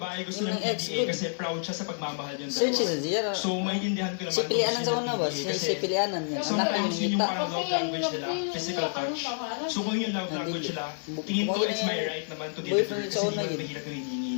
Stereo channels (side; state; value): right; silent; digital silence